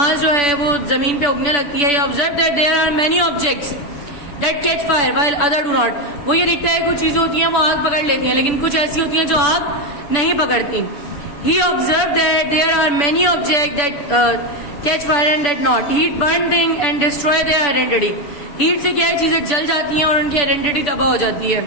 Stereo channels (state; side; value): late; right; 6.9 ms